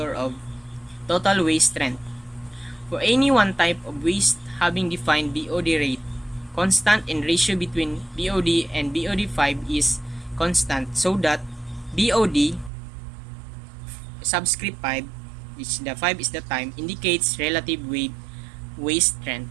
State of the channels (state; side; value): drops out; left; at 12.7 s